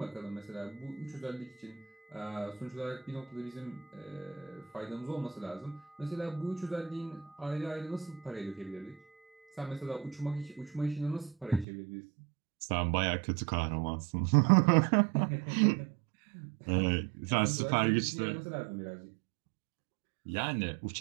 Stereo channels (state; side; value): drops out; left; at 11.7 s